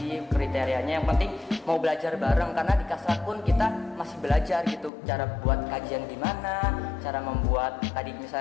kriterianya. Yang penting mau belajar bareng, karena di kasrat pun kita masih belajar gitu, cara buat kajian gimana, cara membuat tadi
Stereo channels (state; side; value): drops out; right; at 4.9 s